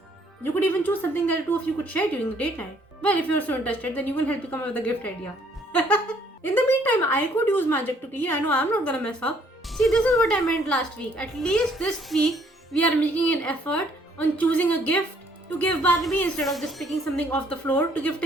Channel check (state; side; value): normal; both; correlation 0.64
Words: You could even choose something that the two of you could share during the date night. Well, if you're so interested, then you will help you come up with a gift idea. In the meantime, I could use magic to clean. I know I'm not gonna mess up. See, this is what I meant last week. At least this week, we are making an effort on choosing a gift to give Barnaby instead of just picking something off the floor to give